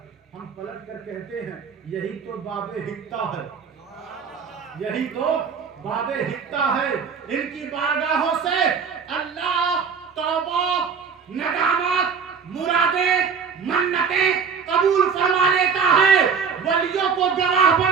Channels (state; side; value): quieter; left; 6.1 dB